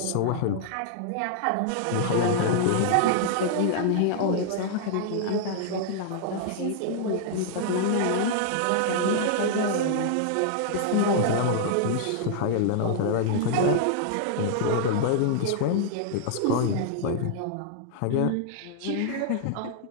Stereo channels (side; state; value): both; different; correlation -0.01